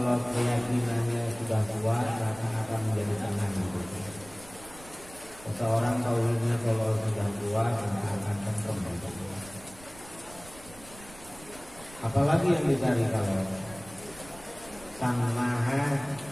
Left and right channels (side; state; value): right; noise; rumble, 20 dB below the sound